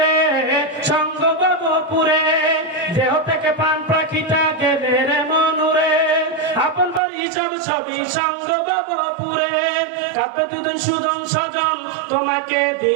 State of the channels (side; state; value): left; drops out; at 7.0 s